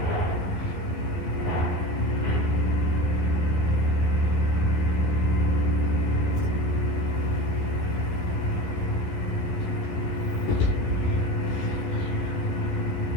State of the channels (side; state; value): right; late; 12 ms